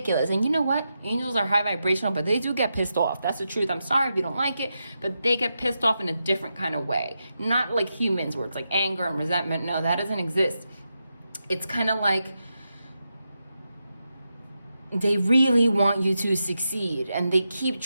And you know what? Angels are high vibrational, but they do get pissed off. That's the truth. I'm sorry if you don't like it, but they get pissed off in a different kind of way. Not like humans where it's like anger and resentment. No, that doesn't exist. It's kind of like they really want you to succeed and they keep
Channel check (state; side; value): inverted; both; correlation -0.88